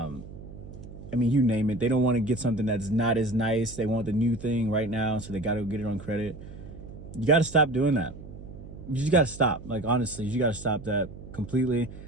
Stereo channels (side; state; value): right; noise; hum, 14 dB below the sound